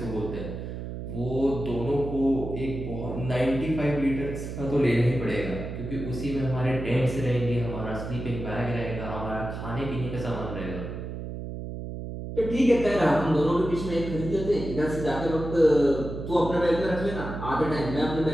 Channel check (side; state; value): right; noise; hum, 7 dB below the sound